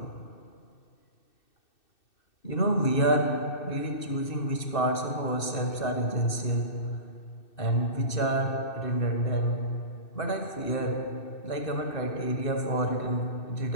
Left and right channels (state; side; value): late; right; 2.6 ms